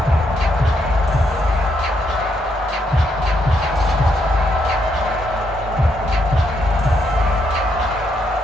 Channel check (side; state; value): both; normal; correlation 0.76